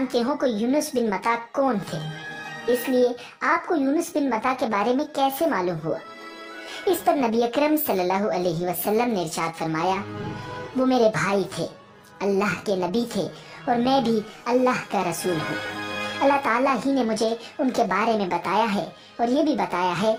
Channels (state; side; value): identical; both; correlation 1.00